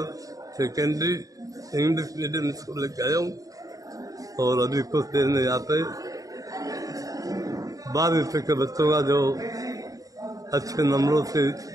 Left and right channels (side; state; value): left; late; 0.17 ms